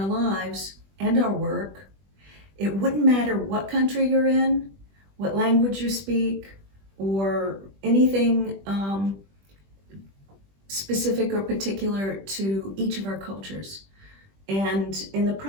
lives and our work. It wouldn't matter what country you're in, what language you speak, or anything specific or particular to each of our cultures. And in the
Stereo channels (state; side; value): late; left; 20 ms